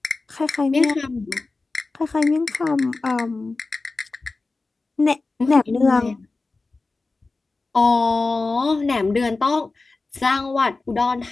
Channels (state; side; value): quieter; right; 3.6 dB